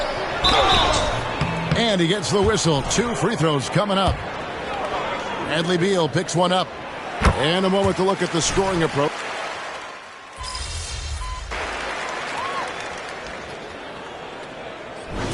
And he gets the whistle. 2 free throws coming up. Bradley Beal picks one up. And a moment to look at the scoring approach.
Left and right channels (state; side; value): identical; both; correlation 1.00